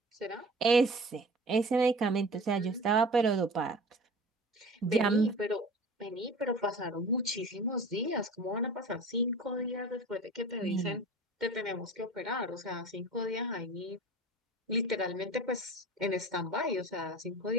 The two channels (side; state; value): both; normal; correlation 0.40